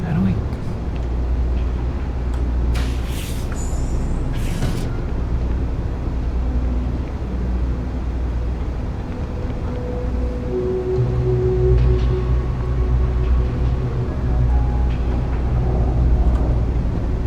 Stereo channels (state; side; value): identical; both; correlation 1.00